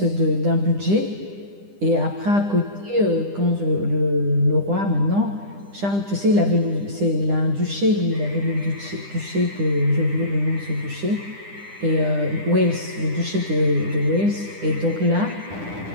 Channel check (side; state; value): left; late; 10 ms